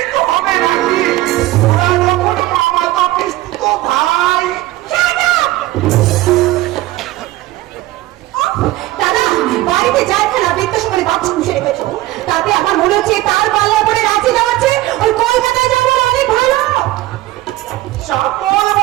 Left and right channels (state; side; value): quieter; left; 17.0 dB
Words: তো হবে নাকি? ওরা যখন মামাতো পিস্তুত ভাই। দাদা, বাড়িতে যাই খেলা বৃত্তাস করে বাচ্চা পুষে রেখেছো, তাতে আমার মনে হচ্ছে তার পাল্লা পরে রাঁচি যাওয়াচ্ছে ওই কলকাতায় যাওয়ার অনেক ভালো। চাপল